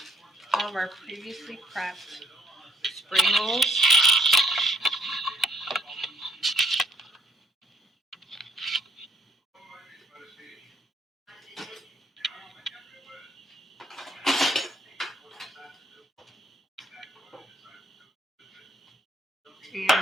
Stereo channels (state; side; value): normal; both; correlation 0.63